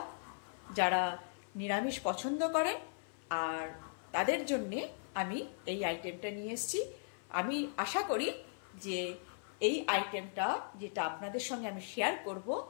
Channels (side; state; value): right; silent; 52 dB below the other